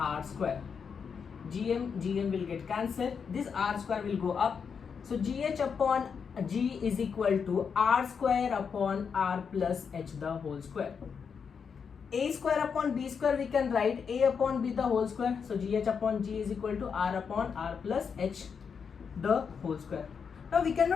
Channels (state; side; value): quieter; right; 6.3 dB